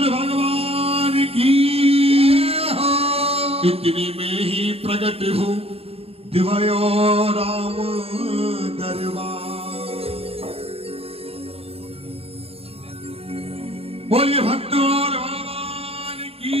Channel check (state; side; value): late; left; 0.28 ms